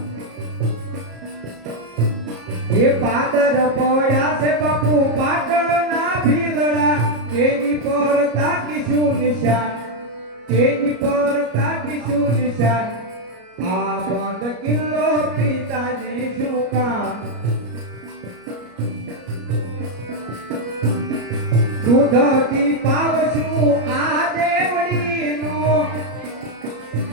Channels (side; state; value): left; late; 33 ms